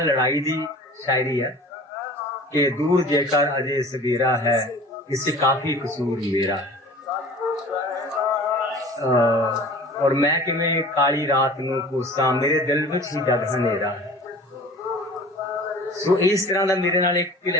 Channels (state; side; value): normal; both; correlation 0.42